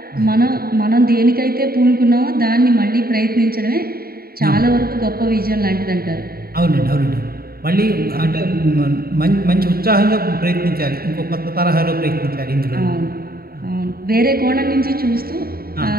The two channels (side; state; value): left; late; 0.44 ms